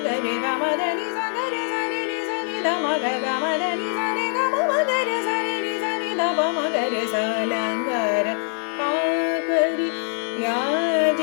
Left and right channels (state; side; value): silent; right; 63 dB below the other